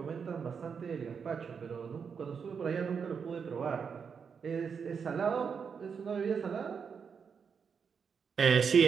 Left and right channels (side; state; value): left; quieter; 6.3 dB